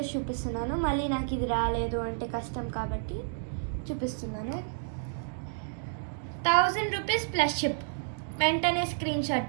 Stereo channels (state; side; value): silent; left; digital silence